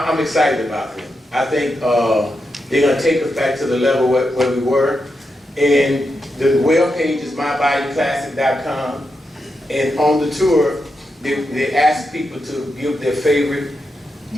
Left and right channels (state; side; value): normal; both; correlation 0.86